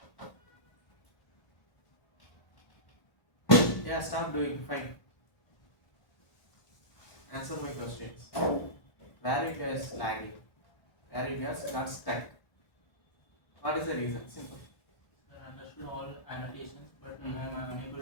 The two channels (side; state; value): right; late; 1.3 ms